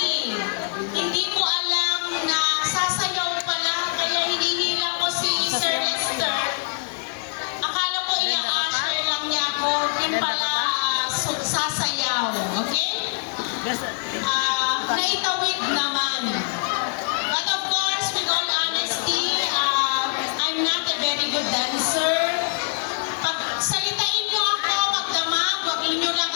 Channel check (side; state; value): right; silent; 63 dB below the other